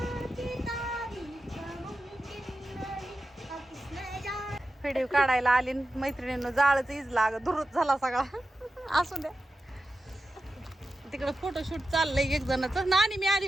व्हिडिओ काढायला आली मैत्रिणींनो, जाळच इजला दुरुत झाला सगळा. असू द्या, तिकडं फोटोशूट चाललंय एक जणाचं. नानी मी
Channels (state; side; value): normal; both; correlation 0.92